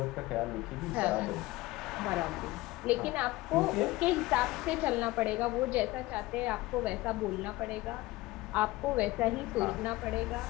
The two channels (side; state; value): right; quieter; 19.4 dB